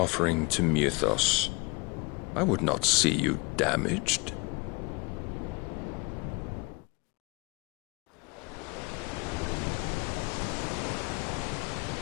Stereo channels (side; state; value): right; quieter; 28.5 dB